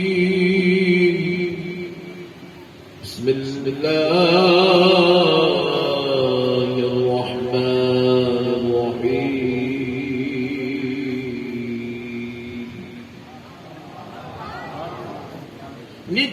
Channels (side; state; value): both; identical; correlation 1.00